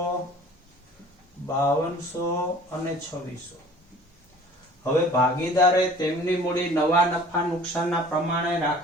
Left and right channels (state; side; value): normal; both; correlation 0.48